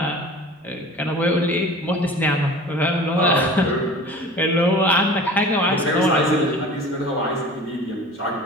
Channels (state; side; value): normal; both; correlation 0.41